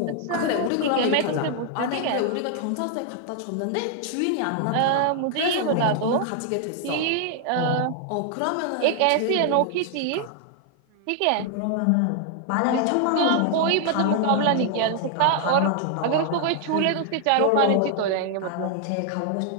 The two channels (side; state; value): both; different; correlation 0.00